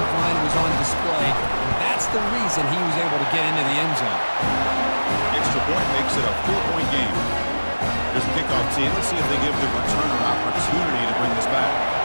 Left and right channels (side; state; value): both; inverted; correlation -1.00